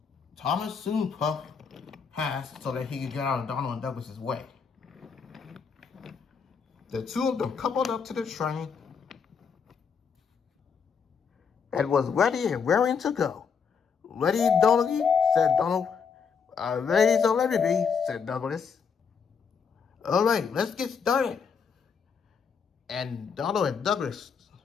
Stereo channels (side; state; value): right; quieter; 6.2 dB